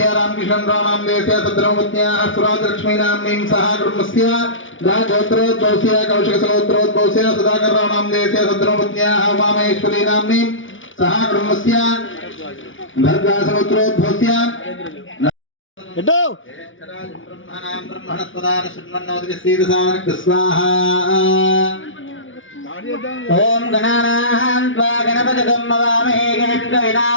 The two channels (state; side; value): late; right; 0.57 ms